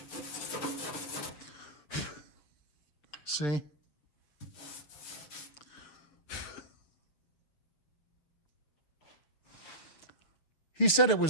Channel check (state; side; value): late; right; 6.7 ms